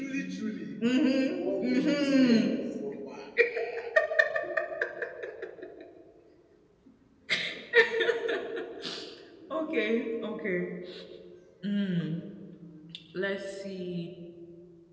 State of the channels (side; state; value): both; identical; correlation 1.00